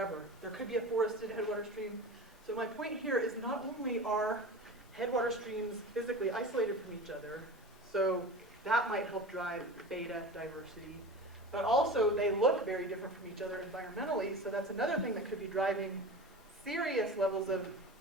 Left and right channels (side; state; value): both; normal; correlation 0.32